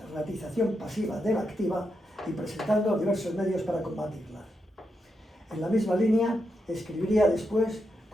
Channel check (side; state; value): both; normal; correlation 0.84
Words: pasiva de la activa y presentando diversos medios para combatirlas. En la misma línea, escribiría después